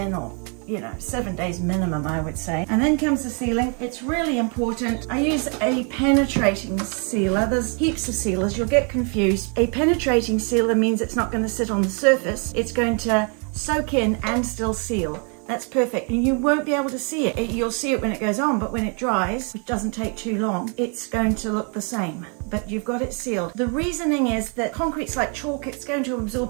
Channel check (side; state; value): left; quieter; 37.8 dB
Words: or 7 days minimum, I would say. And then comes the sealing. It's really important. I use a penetrating sealer. There's heaps of sealers. You'll get confused. A penetrating sealer means it's not going to sit on the surface. It's going to soak in and still seal. That's perfect, and you won't be able to see it. You'll see it when it goes on, but when it dries, which doesn't take too long, it's going to look the same. But you've got it sealed. The reasoning is that concrete's like chalk. It's going to